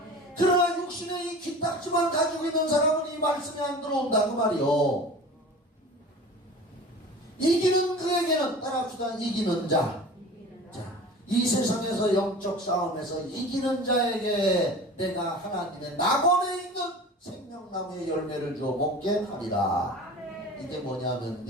그러나 육신의 이 귀딱지만 가지고 있는 사람은 이 말씀이 안 들어온다고 말이요. 이기는 그에게는 따라합시다. 이기는 자. 자, 이 세상에서 영적 싸움에서 이기는 자에게 내가 하나님의 낙원에 있는 생명나무의 열매를 주어 먹게 하리라. 이게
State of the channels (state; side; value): normal; both; correlation 0.38